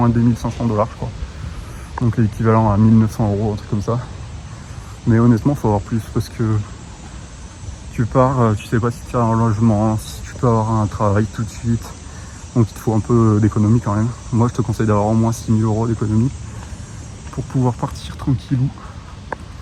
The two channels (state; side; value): identical; both; correlation 1.00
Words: 2500 $, je crois. Donc l'équivalent à 1900 €, un truc comme ça. Mais honnêtement, il faut avoir plus parce que tu pars, tu sais pas si tu as un logement, si tu peux avoir un travail tout de suite. Donc il te faut un peu d'économie quand même. Moi, je te conseille d'avoir au moins 6 000 € d'économie pour pouvoir partir tranquillou,